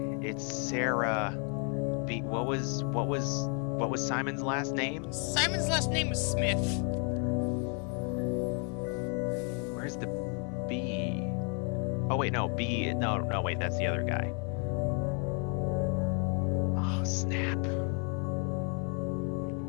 It's Sarah B. What was Simon's last name? Simon's last name was Smith. Where's the B? Oh wait, no, B. No, wait, that's the other guy. Oh, snap.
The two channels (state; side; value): quieter; right; 38.7 dB